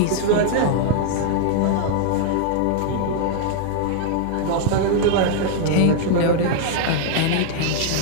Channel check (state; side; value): different; both; correlation -0.01